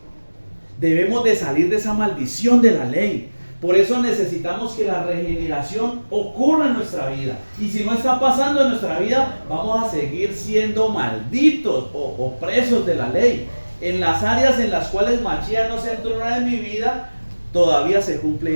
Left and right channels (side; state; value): both; inverted; correlation -1.00